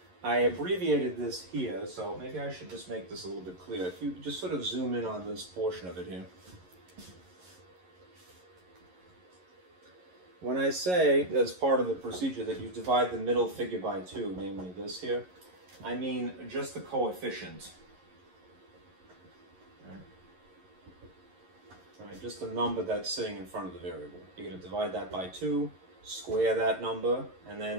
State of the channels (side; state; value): left; late; 11 ms